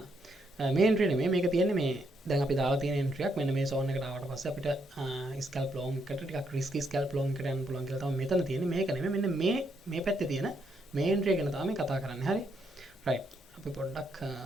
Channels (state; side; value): normal; both; correlation 0.76